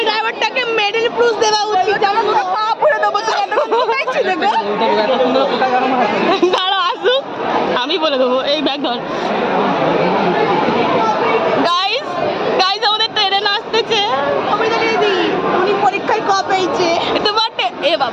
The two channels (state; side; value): identical; both; correlation 1.00